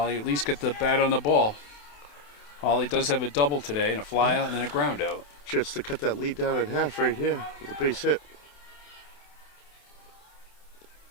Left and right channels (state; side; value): late; right; 28 ms